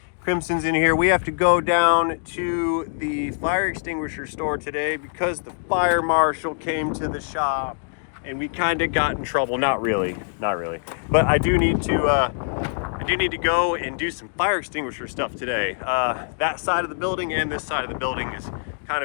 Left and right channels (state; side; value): silent; right; digital silence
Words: Crimson's in here. We have to go down to the fire extinguisher store today because the fire marshal came to the shop and we kind of got in trouble. Not really. But I do need to go and do some fire extinguisher stuff today. That side of the building and this side of the building is kind